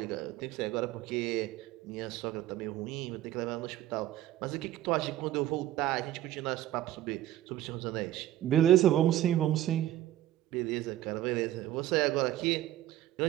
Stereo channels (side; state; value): left; quieter; 13.5 dB